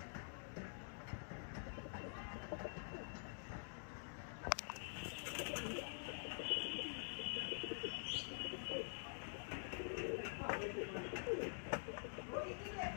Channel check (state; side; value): silent; right; digital silence